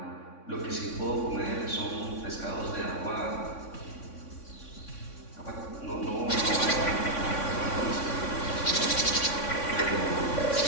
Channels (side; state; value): right; late; 3.6 ms